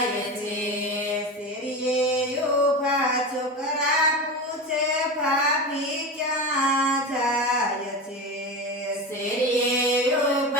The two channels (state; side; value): normal; both; correlation 0.24